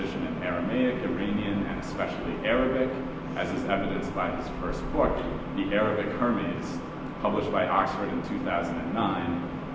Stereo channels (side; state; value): both; identical; correlation 1.00